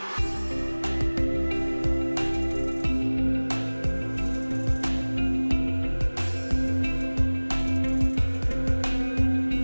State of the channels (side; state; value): both; inverted; correlation -1.00